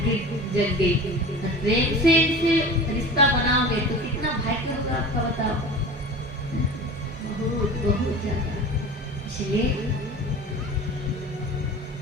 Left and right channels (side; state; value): both; normal; correlation 0.36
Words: जग गई, प्रेम से इनसे रिश्ता बनाओगे तो कितना भाग्य होगा आपका, बताओ, बहुत ज्यादा। इसलिए